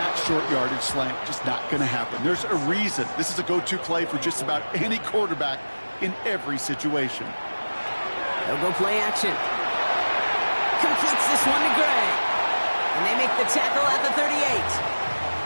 short yardage slant. Just not going to happen. There's a reason. This is a go-to play for just about any quarterback in every situation. They'll go play action. Completes this one to Gray. And they make the tackle at the 38.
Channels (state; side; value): inverted; both; correlation -1.00